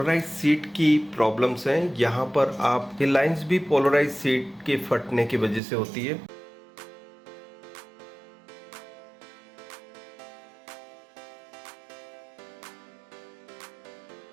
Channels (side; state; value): left; drops out; at 5.6 s